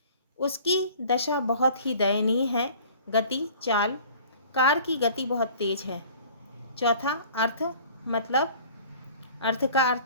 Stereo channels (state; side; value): inverted; both; correlation -0.48